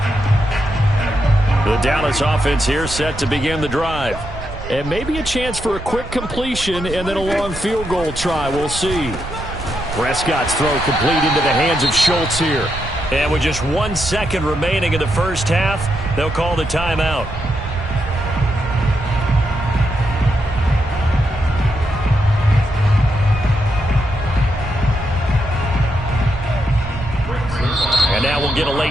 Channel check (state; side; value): noise; right; rumble, 11 dB below the sound